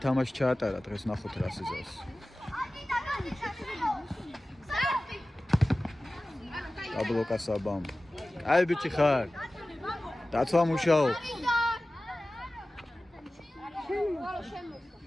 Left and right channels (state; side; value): normal; both; correlation 0.96